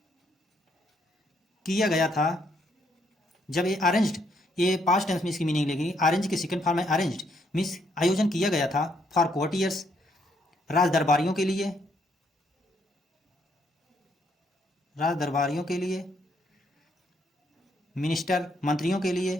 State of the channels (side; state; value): both; normal; correlation 0.72